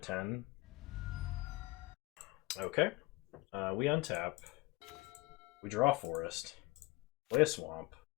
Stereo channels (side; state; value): right; quieter; 22.3 dB